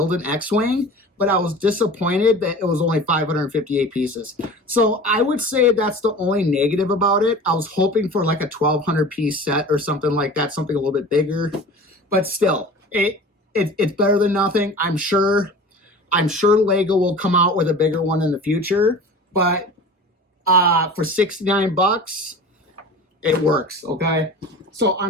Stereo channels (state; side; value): normal; both; correlation 0.38